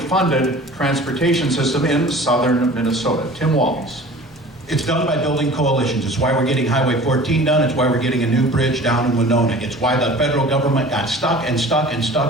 transportation system in southern Minnesota? Tim Walz. It's done by building coalitions. It's why we're getting Highway 14 done. It's why we're getting a new bridge down in Winona. It's why the federal government got stuck and stuck and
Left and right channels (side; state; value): both; normal; correlation 0.43